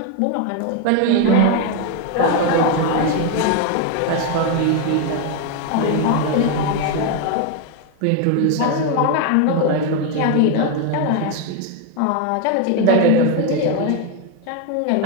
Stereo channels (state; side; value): different; both; correlation 0.01